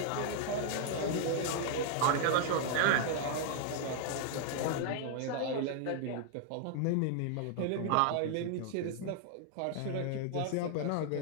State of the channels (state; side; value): different; both; correlation 0.00